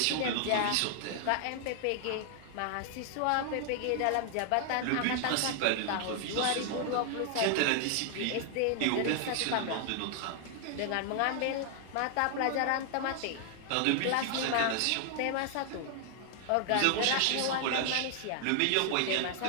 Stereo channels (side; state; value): both; different; correlation 0.00